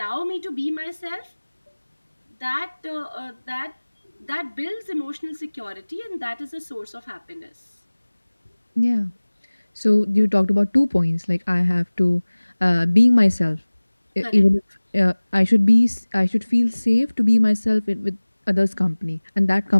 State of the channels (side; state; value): both; inverted; correlation -1.00